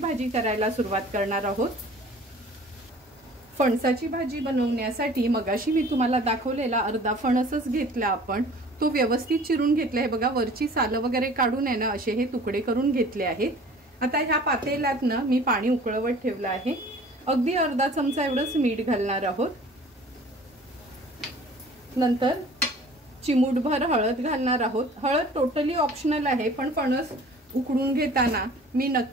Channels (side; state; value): both; normal; correlation 0.48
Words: करायला सुरुवात करणार आहोत। फणसाची भाजी बनवण्यासाठी मगाशी मी तुम्हाला दाखवलेला अर्धा फणसच घेतला आपण, तो व्यवस्थित चिरून घेतला आहे। बघा, वरची सालं वगैरे काढून आहे ना असे हे तुकडे करून घेतले आहेत। आता ह्या पातेल्यात ना मी पाणी उकळवत ठेवलं आहे। अगदी अर्धा चमचा एवढंच मीठ घालणार आहोत। नंतर चिमूटभर हळद घालणार आहोत। हळद टोटली ऑप्शनल आहे, पण फणस उकडून घेताना मी